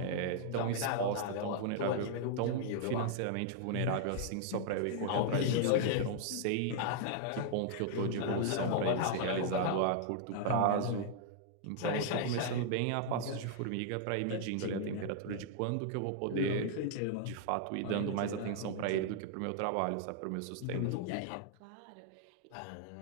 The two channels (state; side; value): different; both; correlation -0.01